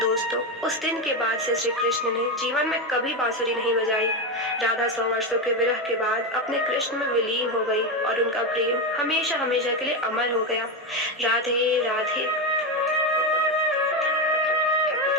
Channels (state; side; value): normal; both; correlation 0.12